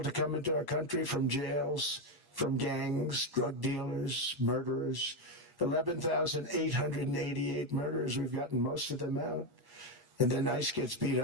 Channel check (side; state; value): left; late; 1.1 ms